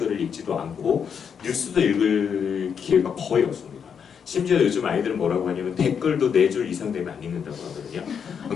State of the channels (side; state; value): right; quieter; 7.1 dB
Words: 읽지도 않고 뉴스도 읽을 기회가 거의 없습니다. 심지어 요즘 아이들은 뭐라고 하냐면 댓글도 4줄 이상 되면 안 읽는다고 하거든요.